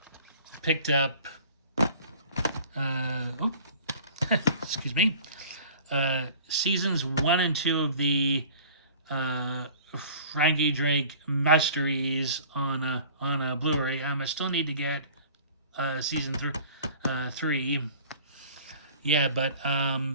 picked up excuse me, seasons 1 and 2 of the Frankie Drake Mysteries on a Blu-ray. I still need to get season 3. Yeah, but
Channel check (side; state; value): both; inverted; correlation -0.46